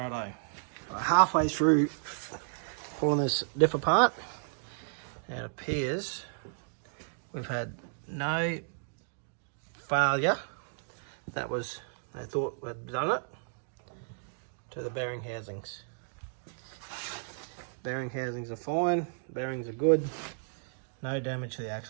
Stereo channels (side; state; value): left; silent; digital silence